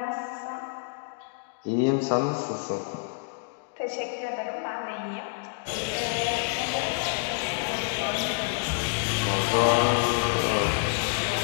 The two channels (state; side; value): silent; right; digital silence